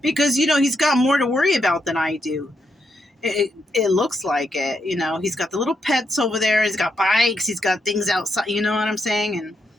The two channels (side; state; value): both; normal; correlation 0.81